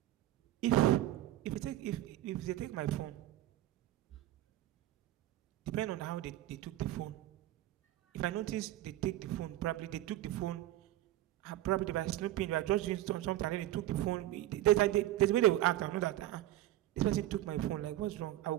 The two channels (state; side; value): quieter; left; 14.5 dB